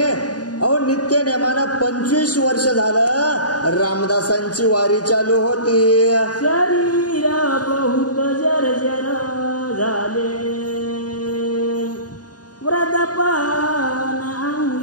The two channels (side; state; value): right; late; 0.68 ms